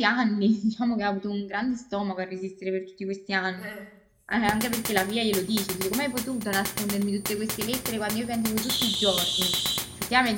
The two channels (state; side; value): identical; both; correlation 1.00